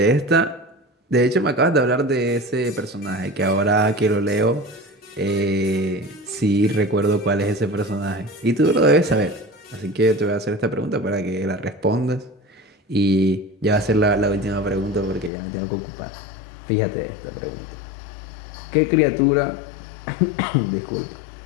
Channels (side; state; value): right; drops out; at 15.3 s